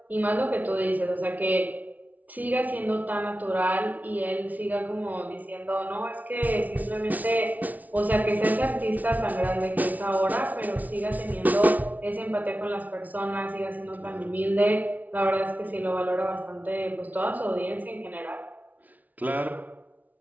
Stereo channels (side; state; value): left; late; 0.075 ms